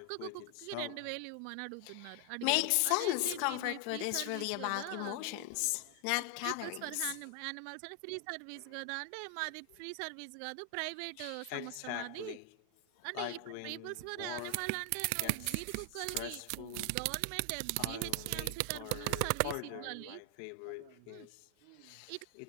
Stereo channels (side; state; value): both; different; correlation 0.00